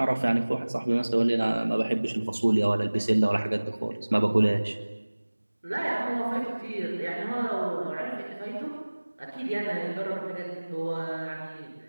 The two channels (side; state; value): both; inverted; correlation -1.00